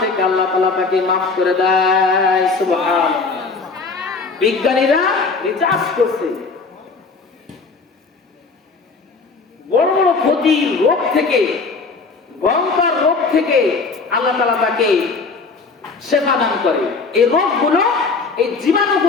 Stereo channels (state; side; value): quieter; right; 4.3 dB